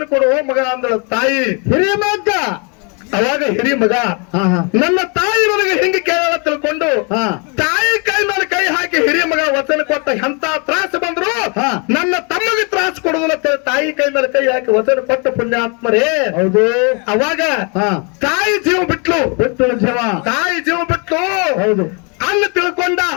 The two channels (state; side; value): quieter; right; 34.2 dB